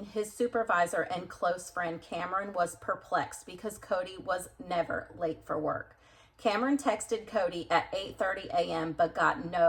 his supervisor and close friend Cameron was perplexed because Cody was never late for work. Cameron texted Cody at 8:30 a.m. but got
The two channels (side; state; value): both; identical; correlation 1.00